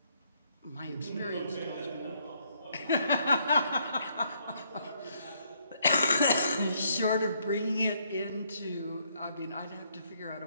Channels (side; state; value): both; inverted; correlation -0.71